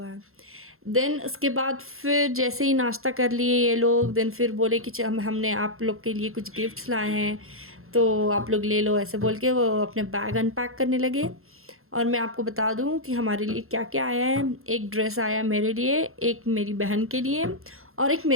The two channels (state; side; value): late; left; 0.62 ms